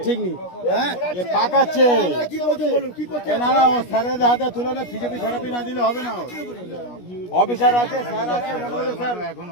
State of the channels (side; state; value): right; late; 17 ms